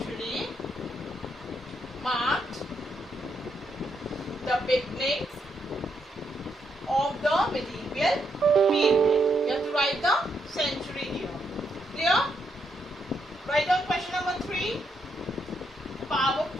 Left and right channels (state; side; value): normal; both; correlation 0.78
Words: marked the beginning of the medieval period? You have to write the century here. Clear? Write down question number 3.